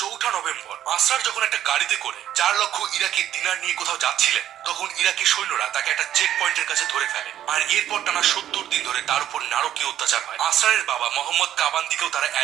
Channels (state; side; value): quieter; left; 11.5 dB